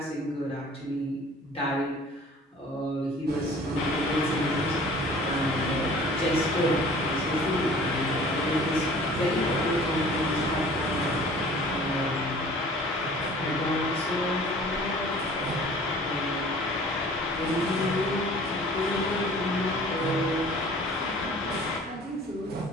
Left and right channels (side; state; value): both; normal; correlation 0.48